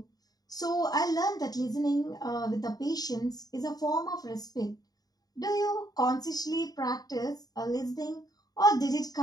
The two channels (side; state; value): right; late; 0.18 ms